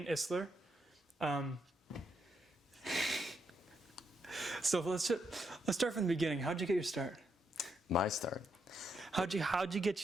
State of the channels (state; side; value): normal; both; correlation 0.79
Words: Issler. So let's start from the beginning. How'd you get your start? My start. How'd you